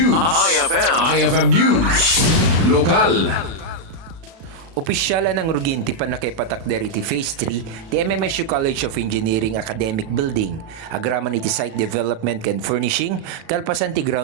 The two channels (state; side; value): late; left; 36 ms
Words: IFM News. Lokal. Opisyala ng Ruginti pa nakaipatakder iti Phase 3 ti MMSU College of Engineering Academic Building. Agraman iti site development and furnishing, kalpasan ti